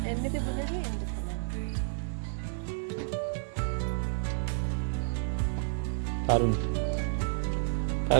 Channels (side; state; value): left; silent; digital silence